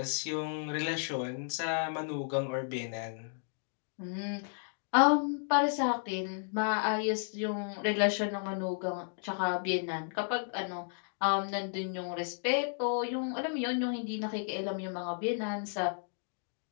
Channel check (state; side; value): silent; right; digital silence